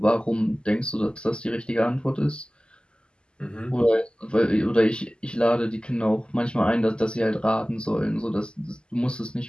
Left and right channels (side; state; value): right; late; 0.048 ms